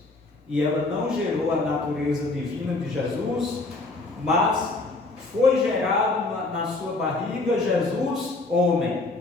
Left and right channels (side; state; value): right; quieter; 3.2 dB